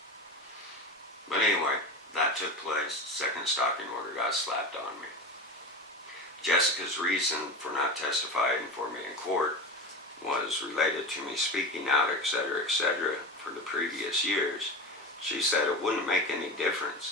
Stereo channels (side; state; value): both; normal; correlation 0.26